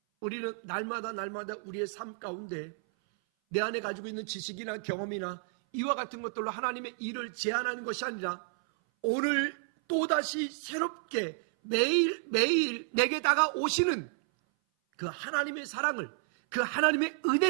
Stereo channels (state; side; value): silent; left; 57 dB below the other